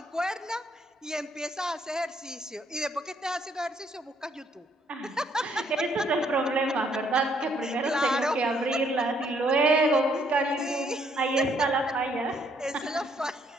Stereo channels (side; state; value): both; normal; correlation 0.68